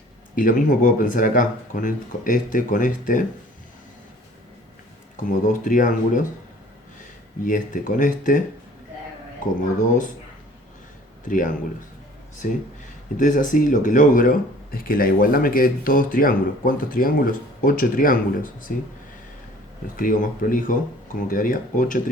Y lo mismo puedo pensar acá, con este, como dos triángulos. Y este con este, como dos triángulos. ¿Sí? Entonces así lo que logro es que la igualdad me quede todos triángulos. ¿Cuántos triángulos? 8 triángulos. ¿Sí? Lo escribo más prolijo, como quedaría: 8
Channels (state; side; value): normal; both; correlation 0.51